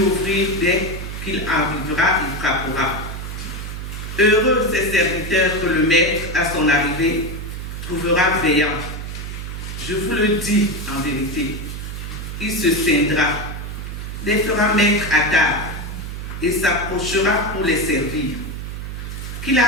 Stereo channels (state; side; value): noise; right; hum, 7 dB below the sound